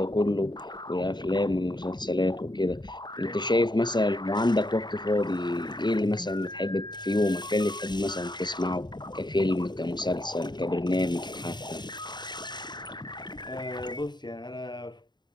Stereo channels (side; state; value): right; late; 0.21 ms